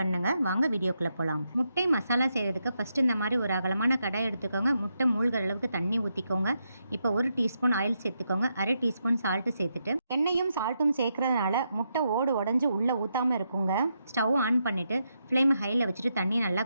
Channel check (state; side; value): inverted; both; correlation -0.82